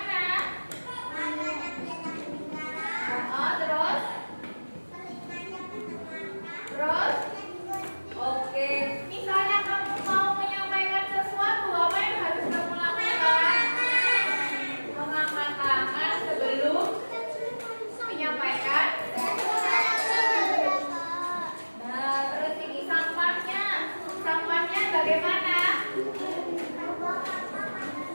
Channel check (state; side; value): inverted; both; correlation -1.00